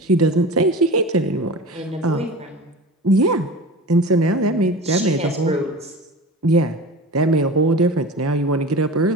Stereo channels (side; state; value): both; normal; correlation 0.33